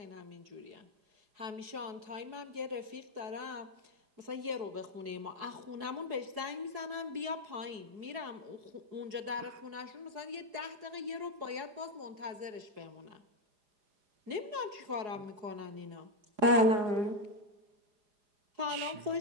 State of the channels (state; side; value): late; left; 4.7 ms